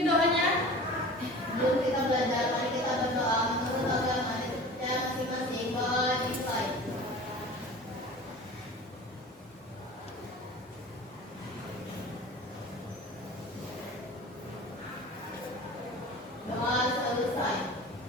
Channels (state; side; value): normal; both; correlation 0.39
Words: doanya. Sebelum kita belajar, mari kita berdoa menurut agama dan masing-masing. Bawa di slide.